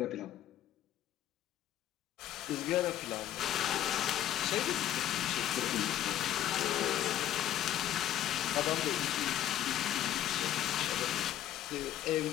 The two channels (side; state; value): right; quieter; 11.8 dB